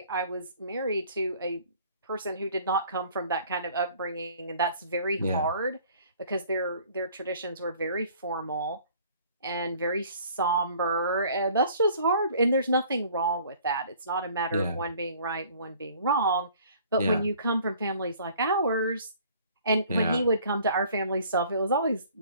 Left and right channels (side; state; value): both; inverted; correlation -0.53